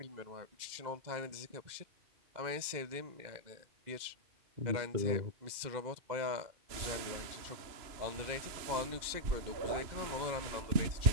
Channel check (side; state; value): left; late; 2.1 ms